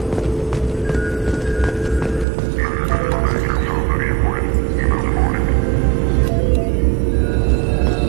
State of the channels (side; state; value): left; drops out; at 2.2 s